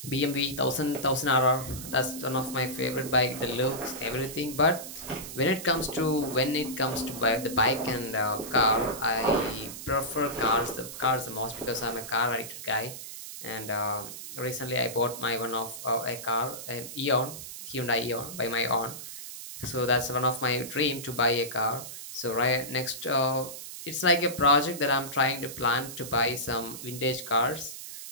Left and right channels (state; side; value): noise; right; hiss, 10 dB below the sound